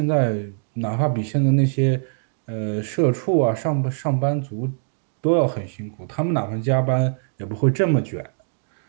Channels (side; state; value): left; silent; digital silence